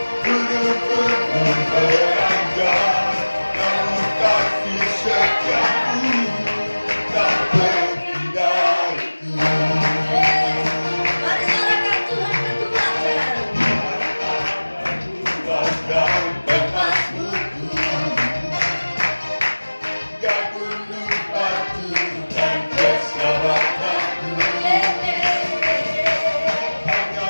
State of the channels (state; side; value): inverted; both; correlation -1.00